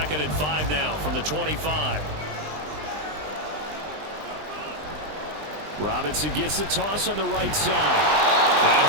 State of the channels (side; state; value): left; late; 20 ms